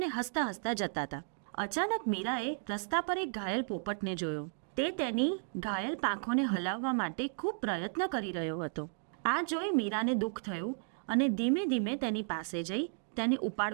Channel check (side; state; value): left; silent; 55 dB below the other